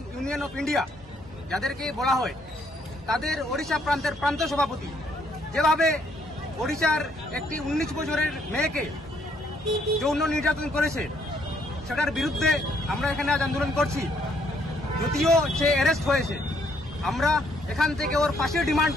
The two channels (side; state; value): both; normal; correlation 0.69